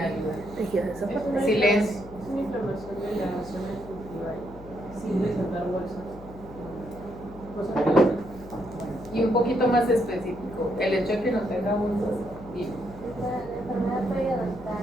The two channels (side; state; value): left; noise; hum, 17 dB below the sound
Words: tejidos esofágicos. Silencio. Es una inflamación de la zona gingival sin desatar bolsas. Cosas que Y un poquito más específico, el hecho de que no tenga bolsas. Dime. La enfermedad